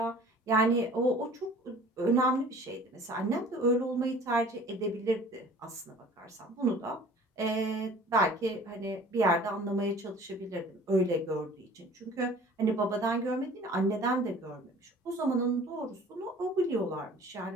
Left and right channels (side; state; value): both; normal; correlation 0.48